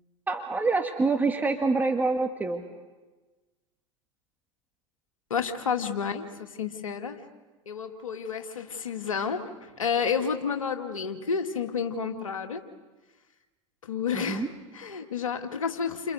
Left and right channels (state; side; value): normal; both; correlation 0.31